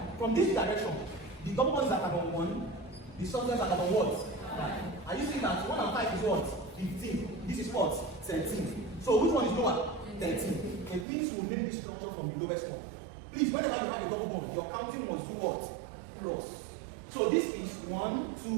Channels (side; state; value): left; drops out; at 11.1 s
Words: From this direction, the double bond is at carbon 1. The substance is at carbon what? 5. Are you seeing that 1 and 5 is what? 15. This is what? 13. So which one is lower? 13. And please will name this structure from the lowest one. Please, whenever you have a double bond, your counting must do what? Cross. So this is 1,